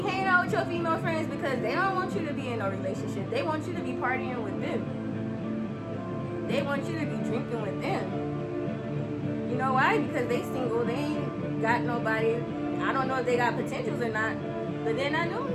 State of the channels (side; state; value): both; identical; correlation 1.00